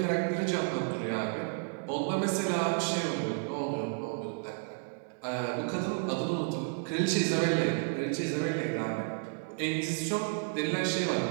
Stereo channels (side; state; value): left; silent; 57 dB below the other